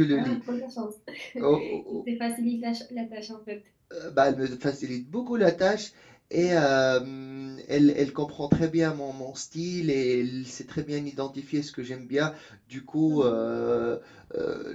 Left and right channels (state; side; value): identical; both; correlation 1.00